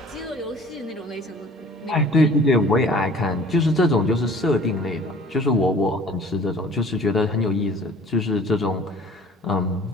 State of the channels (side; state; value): both; normal; correlation 0.48